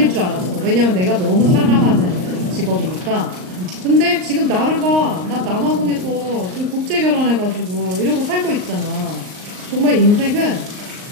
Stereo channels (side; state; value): left; late; 38 ms